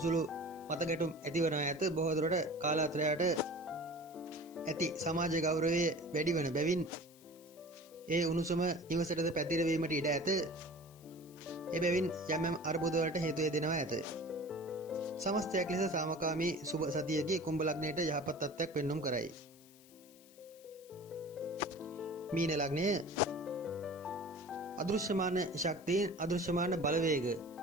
මතගැටුම් ඇති වෙනවා ඇත. බොහෝ දුරට කාලාන්තරයට ඇති සමාජ ගෞරවය වැඩි වන බැවින් ඒ උණුසුම නිවසටද පැතිරවීමට ඉඩ ඇත. එබැවින් යම් අර්බුද වලට හේතු වෙනවා ඇත. සමස්තයක් ලෙස සාමකාමී සුබ සතියකී කුම්භ ලග්නයට යහපත් තත්ත්වයක් පෙන්눔 කරයි. මීන ලග්නය අදෘශ්‍යමාන ශක්තියෙන් අදෘශ්‍යමාන බලවේග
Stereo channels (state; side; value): noise; left; hiss, 24 dB below the sound